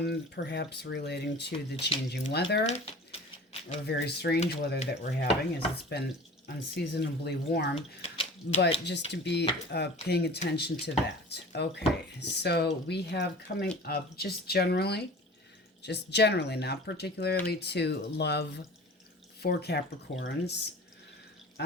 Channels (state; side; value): normal; both; correlation 0.40